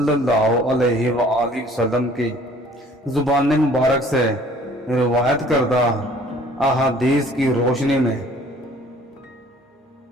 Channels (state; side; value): normal; both; correlation 0.54